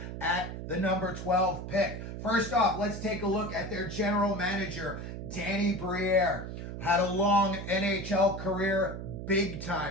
at the number 12 pick. First off, let's take a look at their general manager, Danny Briere. Had a long NHL career,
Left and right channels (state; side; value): noise; right; hum, 8 dB below the sound